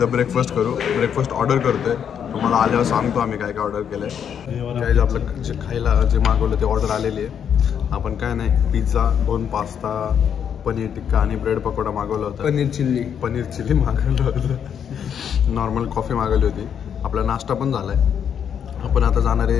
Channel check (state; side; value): quieter; right; 8.2 dB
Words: ब्रेकफास्ट करू. ब्रेकफास्ट ऑर्डर करतोय. तुम्हाला आल्यावर सांगतो आम्ही काय काय ऑर्डर केलंय. काय आपलं जे खायला जे मागवलं ते ऑर्डर आलेली आहे. आपण काय नाही, पिझ्झा, 2 पास्ता, पनीर टिक्का आणि ब्रेड पकोडा मागवला होता. पनीर चिल्ली मागवलं होतं. नॉर्मल कॉफी मागवली होती. आपला नाश्ता पण झालाय. आपण आता जाणार